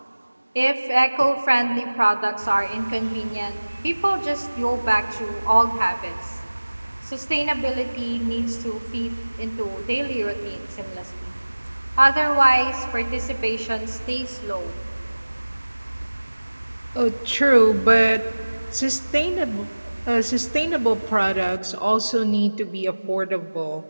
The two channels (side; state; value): both; inverted; correlation -1.00